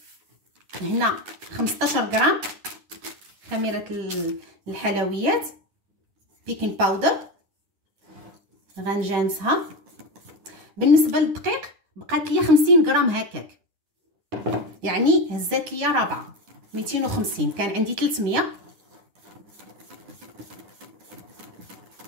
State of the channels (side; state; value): left; late; 11 ms